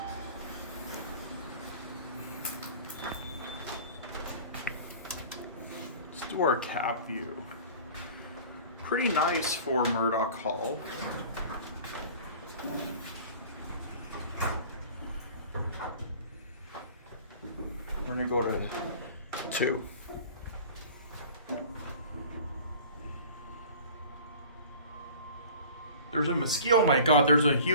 Let's do our cab view. Pretty nice for Murdock Hall. We're gonna go to 2. There's a mosquito. Oh my god, there's a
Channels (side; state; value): both; inverted; correlation -0.43